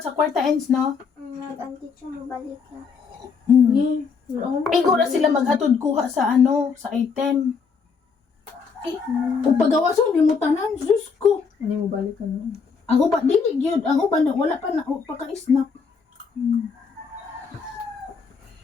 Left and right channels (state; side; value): quieter; right; 5.5 dB